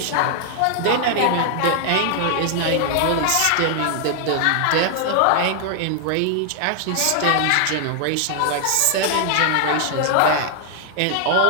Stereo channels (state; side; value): different; both; correlation 0.00